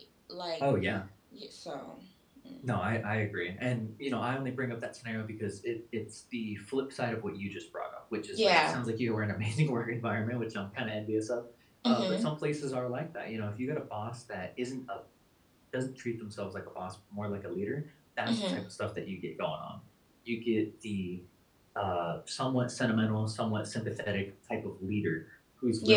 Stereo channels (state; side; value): identical; both; correlation 1.00